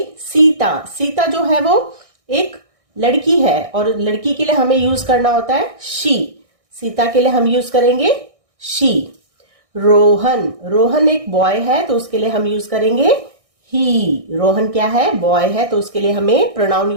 सीता। सीता जो है वो एक लड़की है और लड़की के लिए हमें यूज करना होता है शी। सीता के लिए हम यूज करेंगे शी। रोहन। रोहन एक बॉय है तो उसके लिए हम यूज करेंगे ही। रोहन क्या है? बॉय है, तो उसके लिए हमें प्रोनाउन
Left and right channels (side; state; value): left; late; 1.6 ms